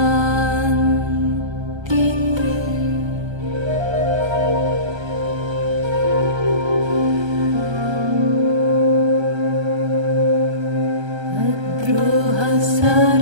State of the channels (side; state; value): left; late; 1.3 ms